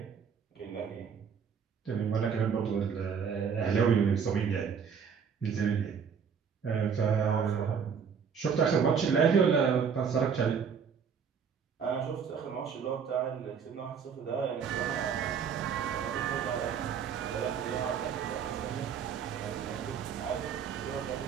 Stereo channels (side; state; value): left; quieter; 6.8 dB